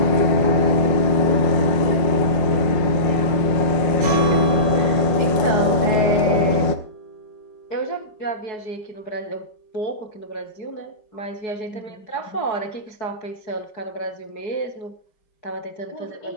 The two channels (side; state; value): right; late; 5.5 ms